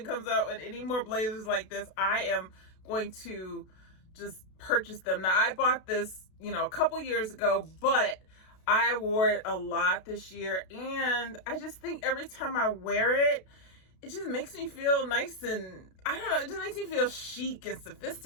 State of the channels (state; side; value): late; right; 32 ms